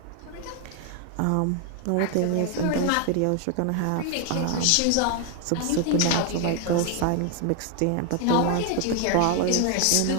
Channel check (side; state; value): both; different; correlation 0.00